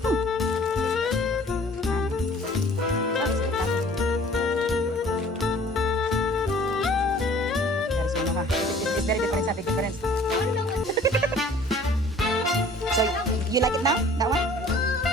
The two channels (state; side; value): normal; both; correlation 0.52